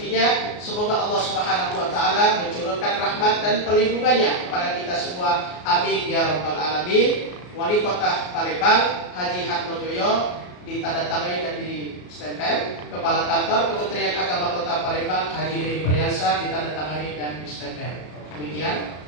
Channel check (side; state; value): right; late; 33 ms